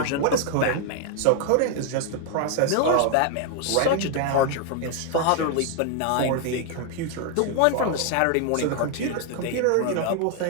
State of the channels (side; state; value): both; different; correlation 0.00